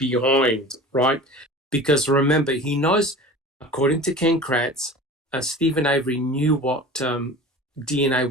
right? Because remember, he knows, according to Ken Kratz, Stephen Avery knew what DNA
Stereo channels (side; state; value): both; normal; correlation 0.37